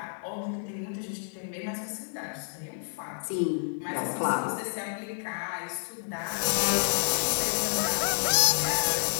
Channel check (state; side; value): silent; right; digital silence